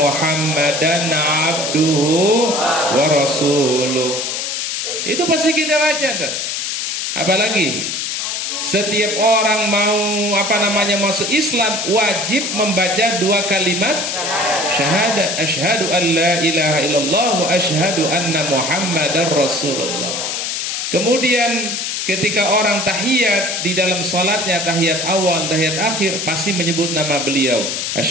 abduhu wa rasuluh. Itu pasti kita baca tuh. Apalagi setiap orang mau masuk Islam wajib membaca dua kalimat syahadat, asyhadu an la ilaha illallah wa asyhadu anna Muhammadar Rasulullah. Kemudian ketika orang tahiyat di dalam salatnya, tahiyat awal, tahiyat akhir, pasti menyebut nama beliau,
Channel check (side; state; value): left; noise; hiss, 2 dB below the sound